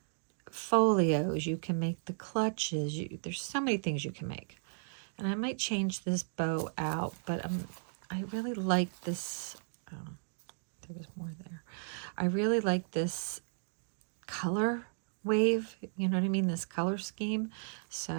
folios, you can make the clutches, there's so many things you can make. And I might change this bow out, but I really like this. Oh, there was more there. I really like this color wave, you know what I mean, this color scheme,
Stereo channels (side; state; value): left; silent; digital silence